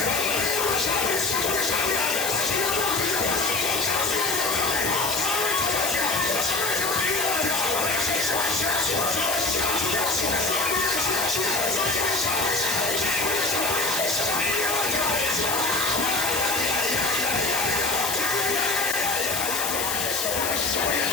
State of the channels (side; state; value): left; noise; hiss, 2 dB below the sound